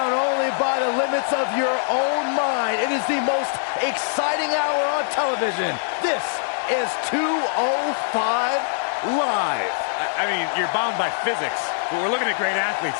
only by the limits of your own mind. It is the most exciting hour on television. This is 205 Live. I mean, you're bound by physics, but we're looking at great athletes,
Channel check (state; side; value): silent; right; 61 dB below the other